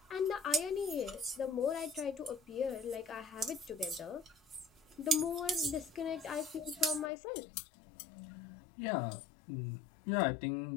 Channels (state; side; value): drops out; right; at 7.1 s